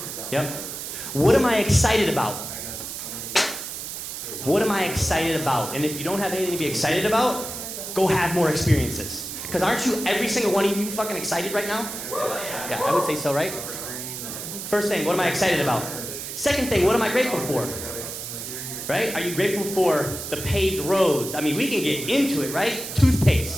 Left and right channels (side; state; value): right; noise; hiss, 7 dB below the sound